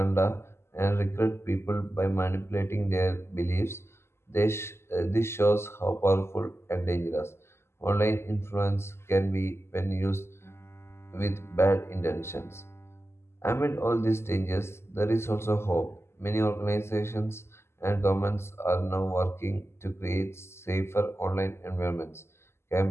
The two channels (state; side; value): late; right; 0.12 ms